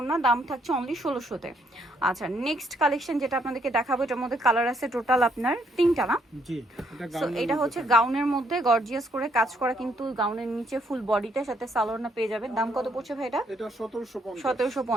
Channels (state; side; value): normal; both; correlation 0.71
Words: দাম থাকছে অনলি 1600-তে। আচ্ছা, নেক্সট কালেকশন যেটা আপনাদেরকে দেখাবো, এটার মধ্যে কালার আছে টোটাল আপনার তিনটা না? জি, সো এটা হচ্ছে গাউনের মধ্যে গর্জিয়াস করে কাজ করা, কিন্তু গাউনের নিচে ফুল বডিটার সাথে সালোয়ার পেয়ে যাবেন। দাম কত পড়ছে ভাই এটা? এটা 1750।